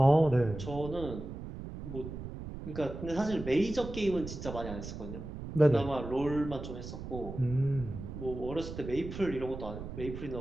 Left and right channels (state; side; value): noise; right; rumble, 9 dB below the sound